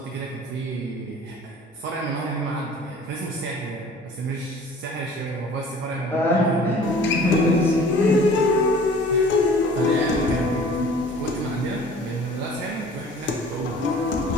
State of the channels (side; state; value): both; normal; correlation 0.48